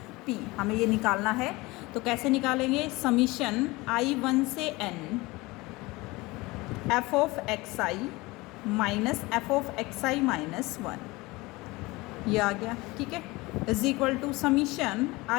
p, हमें ये निकालना है। तो कैसे निकालेंगे, समीशन i1 से n f of xi minus F of xi minus 1, ये आ गया। ठीक है, is equal to summation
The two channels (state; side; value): quieter; right; 22.2 dB